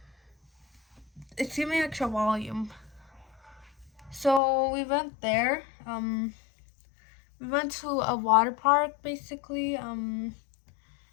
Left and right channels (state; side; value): drops out; right; at 4.4 s